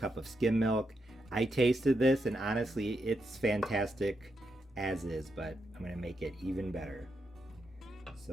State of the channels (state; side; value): normal; both; correlation 0.83